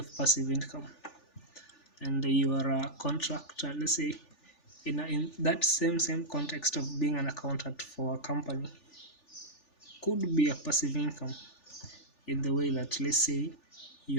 passive income, and you are a contractor, let's say in that same context of being an accountant for a company, could be a passive income, in the way that, let's say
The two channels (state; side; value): late; right; 3.4 ms